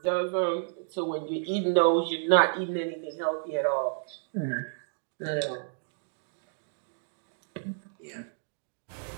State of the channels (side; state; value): left; silent; digital silence